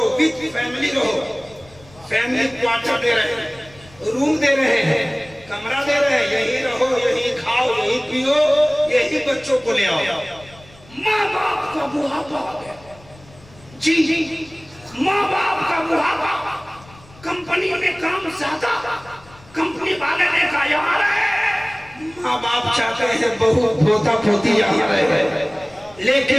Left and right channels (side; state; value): left; noise; rumble, 24 dB below the sound